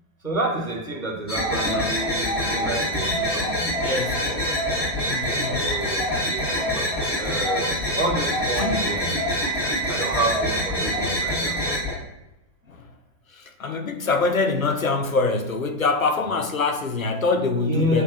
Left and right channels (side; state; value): right; late; 1.2 ms